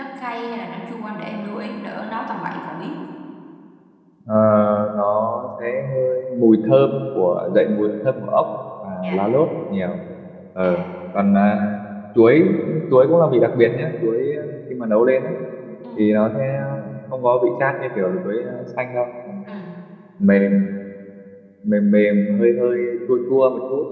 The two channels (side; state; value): both; identical; correlation 1.00